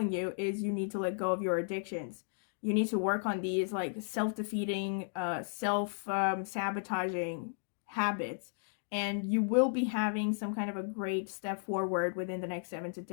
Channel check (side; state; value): right; silent; digital silence